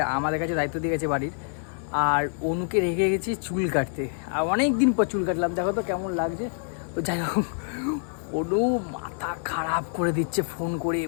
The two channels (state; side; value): silent; right; digital silence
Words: আমাদের কাছে দায়িত্ব দিয়ে গেছে বাড়ির। আর অনুকে রেখে গেছি চুল কাটতে। আর অনেক দিন পর চুল কাটলাম, দেখো তো কেমন লাগছে। তো যাই হোক, অনু মাথা খারাপ করে দিচ্ছে ফোন করে,